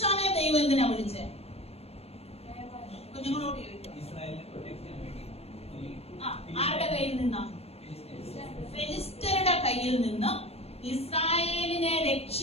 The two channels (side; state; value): right; late; 0.29 ms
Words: ദൈവം എന്തിനാ വിളിച്ചേ? കുഞ്ഞുങ്ങളോട് ചോദിക്കും. ആരുടെ കയ്യിൽ നിന്നാ? ഫെലിസ്ത്യരുടെ കയ്യിൽ നിന്ന് ഇസ്രായേലിനെ